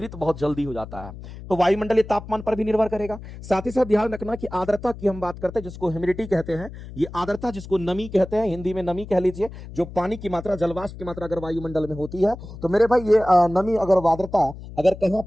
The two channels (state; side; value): noise; left; hum, 13 dB below the sound